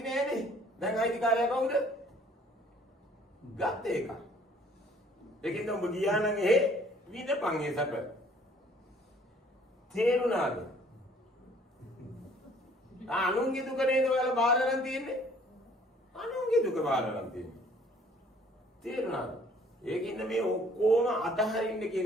නෑනේ. දැන් අයිතිකාරයා කවුද? ගත්ත එක. ඒකින්ද උඹ ගියා නම් එහෙ විඳපන් ඒ සැප. තේරුණාද? අනුන්ගේ දුක නේද ඔයාලා බාර ගන්න තියෙන්නේ? අනුන්ගේ දුක බාර ගන්න තියෙන්නේ. තේරුණාද? ඒකින්ද මේ ඔක්කොම අතහරින්න කියන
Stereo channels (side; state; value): both; normal; correlation 0.57